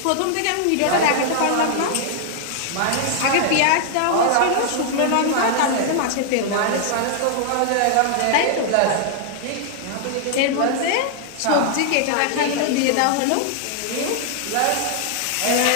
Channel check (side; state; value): both; different; correlation -0.01